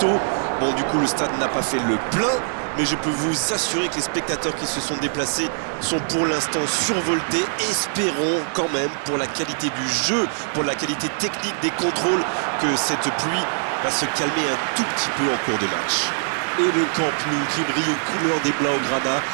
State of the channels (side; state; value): left; silent; 64 dB below the other